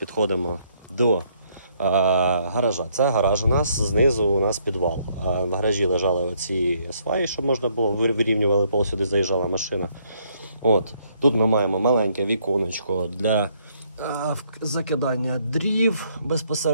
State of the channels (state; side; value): inverted; both; correlation -0.69